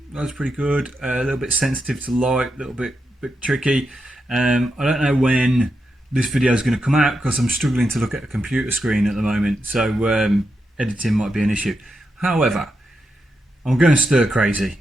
The eye's pretty good. A little bit sensitive to light, a little bit tricky. I don't know when this video is going to come out because I'm struggling to look at a computer screen at the moment, so editing might be an issue. However, I'm going stir crazy,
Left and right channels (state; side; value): normal; both; correlation 0.85